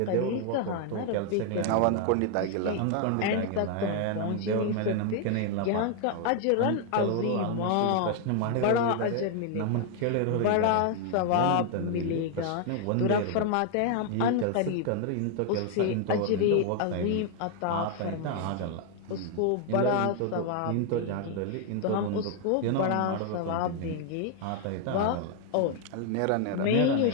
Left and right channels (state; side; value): different; both; correlation 0.00